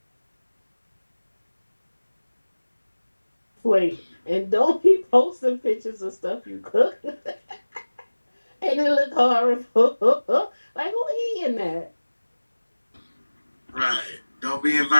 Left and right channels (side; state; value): both; inverted; correlation -1.00